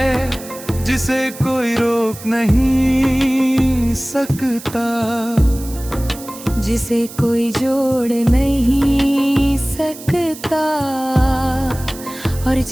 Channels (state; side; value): noise; right; hiss, 15 dB below the sound